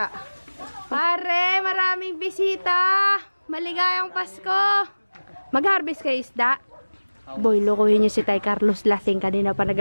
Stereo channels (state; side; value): inverted; both; correlation -1.00